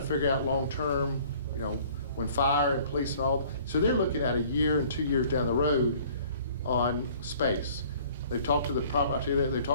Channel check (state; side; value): inverted; both; correlation -0.53